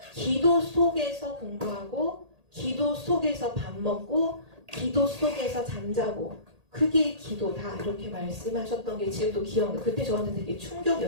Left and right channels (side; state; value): left; late; 1.8 ms